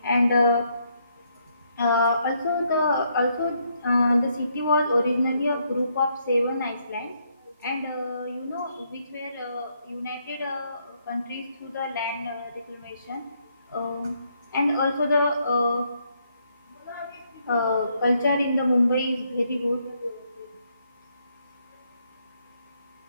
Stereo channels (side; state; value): both; inverted; correlation -0.74